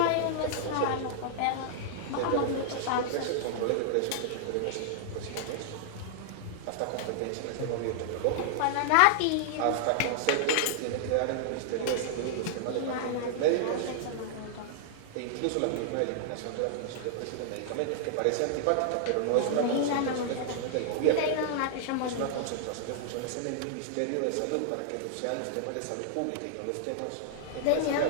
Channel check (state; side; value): different; both; correlation -0.01